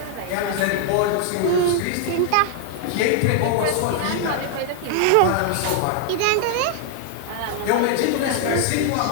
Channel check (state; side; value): different; both; correlation 0.00